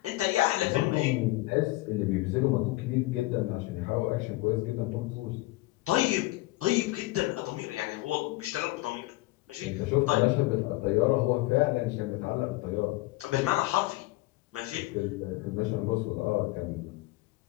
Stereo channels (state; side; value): quieter; right; 19.8 dB